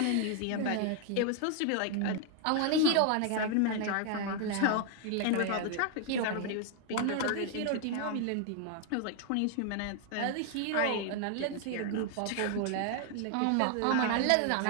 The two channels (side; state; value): both; different; correlation 0.00